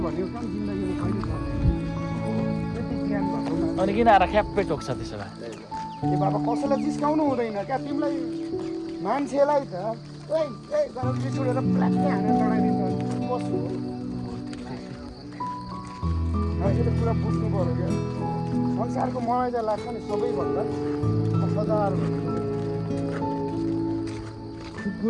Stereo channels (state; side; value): identical; both; correlation 1.00